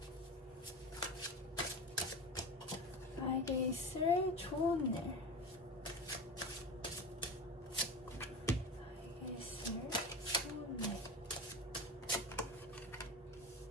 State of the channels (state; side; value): normal; both; correlation 0.28